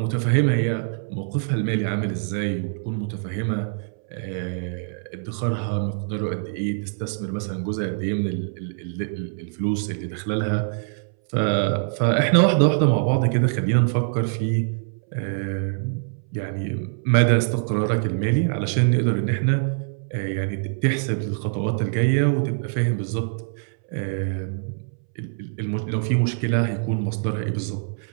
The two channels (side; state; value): left; silent; 63 dB below the other